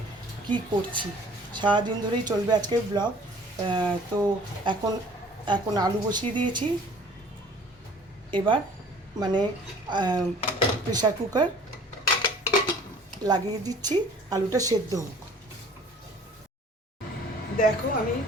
কি করছি, সারাদিন ধরেই চলবে আজকে ব্লগ। তো এখন এখন আলু বসিয়ে দিয়েছি। এবার মানে প্রেশার কুকার লাগিয়ে দিচ্ছি, আলুটা সেদ্ধ হোক। দেখো আমি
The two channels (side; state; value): both; normal; correlation 0.51